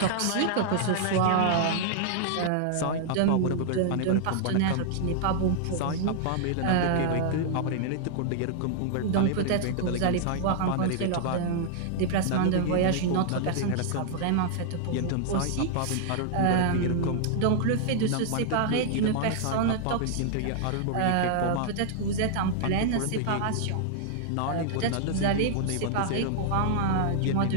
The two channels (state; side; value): different; both; correlation -0.01